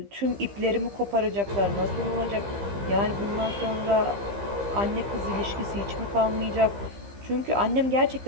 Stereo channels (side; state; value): left; late; 15 ms